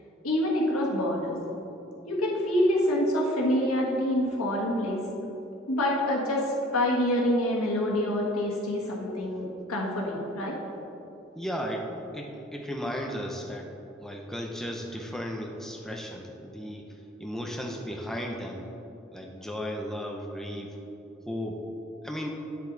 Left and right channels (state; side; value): normal; both; correlation 0.52